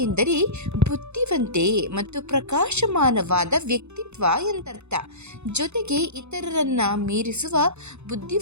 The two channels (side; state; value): left; late; 0.81 ms